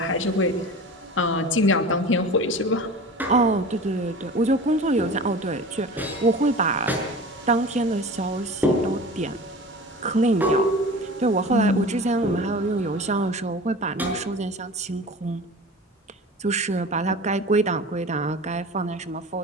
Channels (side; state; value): both; normal; correlation 0.36